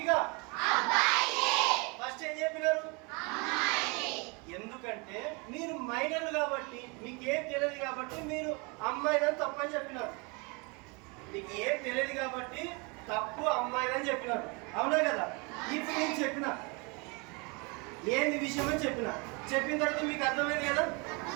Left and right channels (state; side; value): quieter; left; 30.0 dB